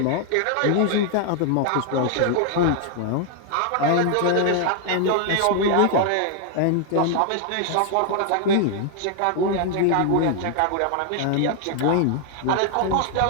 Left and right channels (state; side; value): different; both; correlation 0.00